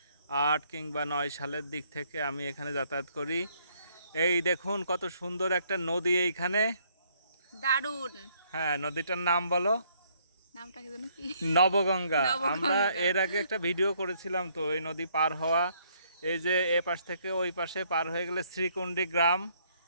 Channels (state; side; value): inverted; both; correlation -0.68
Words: কিংবা 9 সালের দিক থেকে আমি এখানে যাতায়াত করি। এই দেখুন কত সুন্দর একটা নদী এইখানে। দারুণ। হ্যাঁ, নদীটার নাম বলো। নামটা কি জানো কি? নবগঙ্গা। আমরা নবগঙ্গা। এর আগে একটা ভিডিও করেছিলাম তো, এই নদী পার হওয়া। এই যে এ পাশ থেকে ওই পাশে পার হয়ে গেলে শ্রীকুণ্ডী গ্রাম।